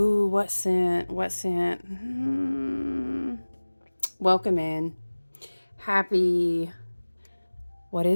what scent? What scent? Welcome in. Happy, what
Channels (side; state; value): both; inverted; correlation -1.00